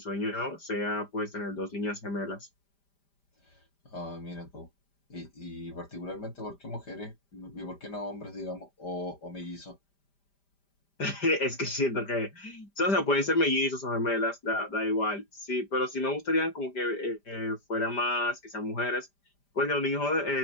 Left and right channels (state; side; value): late; right; 5.0 ms